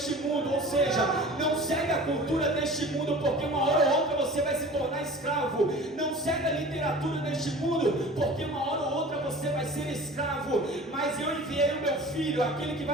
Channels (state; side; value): normal; both; correlation 0.41